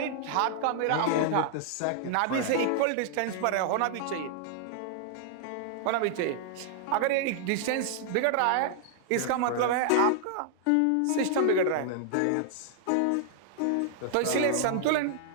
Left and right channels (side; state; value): both; different; correlation 0.00